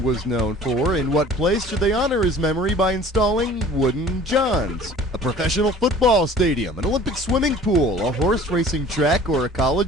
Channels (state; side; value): normal; both; correlation 0.47